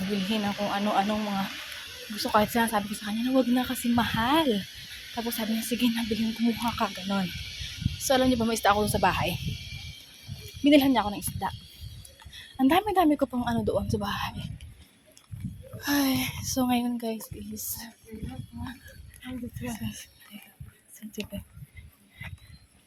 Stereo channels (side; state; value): both; identical; correlation 1.00